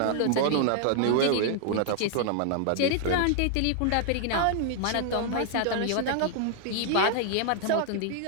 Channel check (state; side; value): different; both; correlation 0.00